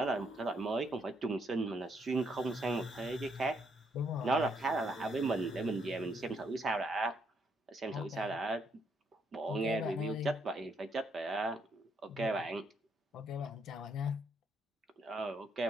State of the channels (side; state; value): both; normal; correlation 0.73